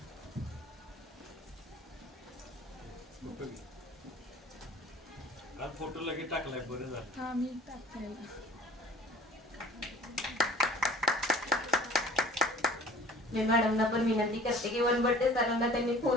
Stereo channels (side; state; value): both; normal; correlation 0.46